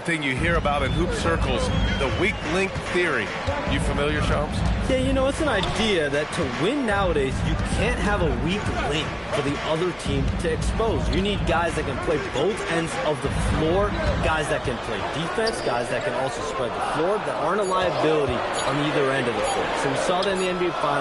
thing you hear about in hoop circles, the weak link theory. You familiar, Shams? Yeah, you know, it's an idea that to win nowadays, you can't have a weak link for the other team to expose. You need guys that can play both ends of the floor, guys that can play defense, guys that can also spread the floor, that aren't a liability on either end of the floor. So we saw that in the NBA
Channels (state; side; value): identical; both; correlation 1.00